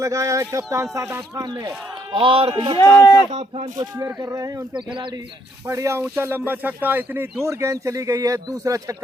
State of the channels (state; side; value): normal; both; correlation 0.71